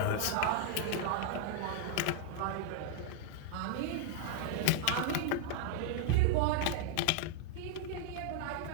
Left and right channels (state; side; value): different; both; correlation -0.01